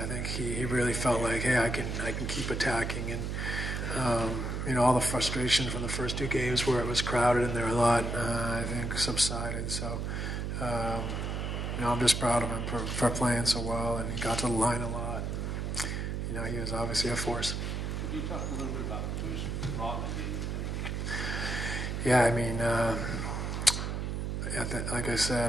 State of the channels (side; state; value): right; noise; hum, 2 dB below the sound